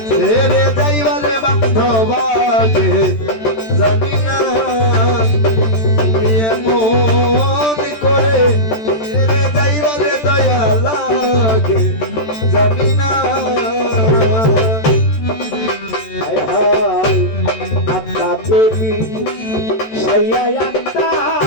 ছেড়ে যাইবারে বান্ধবাকে জানি না তুমি এমন করে ছেড়ে যাইবারে দয়া লাগে জানি না হায় হায় আত্মা দেবী সাইয়া আত্মা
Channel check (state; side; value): late; right; 13 ms